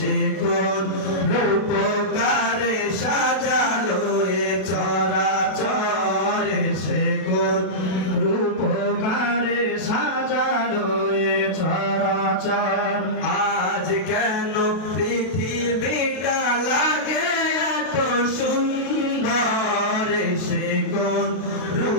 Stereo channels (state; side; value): late; right; 32 ms